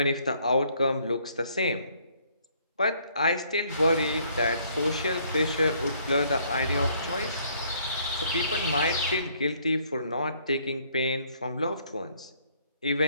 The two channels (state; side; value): inverted; both; correlation -0.65